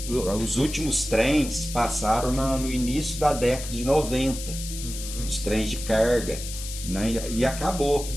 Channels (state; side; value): noise; left; hiss, 9 dB below the sound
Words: os últimos trens passaram no início da década de 90, os trens de carga, né, e acabou.